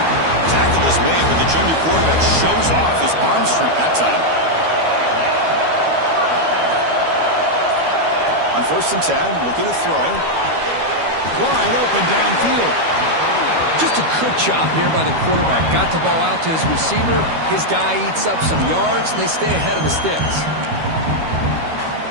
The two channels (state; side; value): late; left; 12 ms